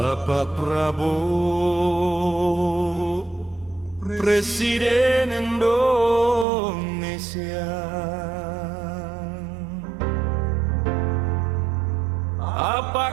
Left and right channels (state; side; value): drops out; left; at 6.5 s